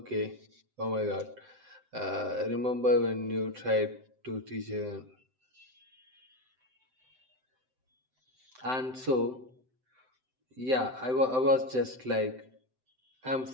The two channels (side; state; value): left; late; 7.8 ms